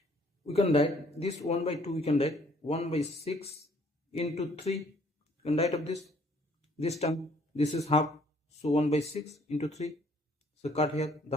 we can write this 1 by 2, we can write 1 by 6 into 3. We can write up this term. This is half, so 1 by 6 into 3, so cut here the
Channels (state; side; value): normal; both; correlation 0.61